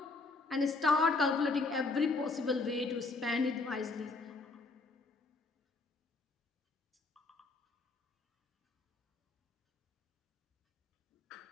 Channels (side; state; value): right; quieter; 3.6 dB